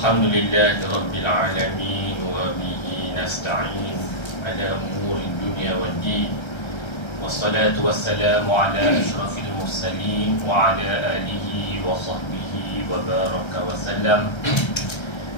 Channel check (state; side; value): late; right; 1.3 ms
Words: rabbil alamin wa bihi nasta'in ala umuri dunya waddin. Wassalatu wassalamu ala asyrafil mursalin wa ala alihi wa sahbihi wa baraka wa sallam.